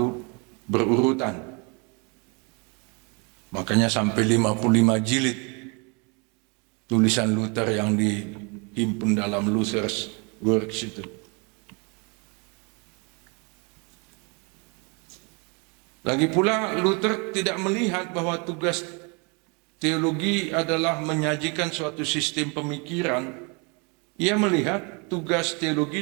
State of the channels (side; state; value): left; quieter; 32.4 dB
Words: berurutan. Makanya sampai 55 jilid tulisan Luther yang dihimpun dalam Luther's Works itu. Lagi pula Luther tidak melihat bahwa tugas teologi adalah menyajikan suatu sistem pemikiran. Ia melihat tugas